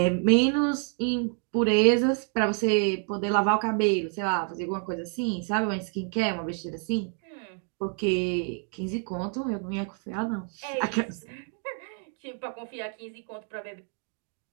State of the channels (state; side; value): quieter; left; 39.5 dB